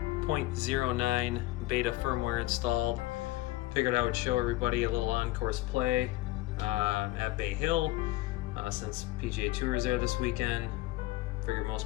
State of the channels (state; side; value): quieter; right; 18.0 dB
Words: 0.09 beta firmware installed. Figured I would show everybody a little on-course play at Bay Hill since PGA Tour is there this weekend. Figured